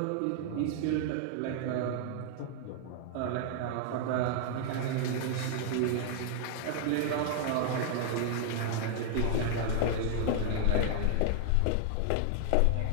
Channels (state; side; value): different; both; correlation -0.01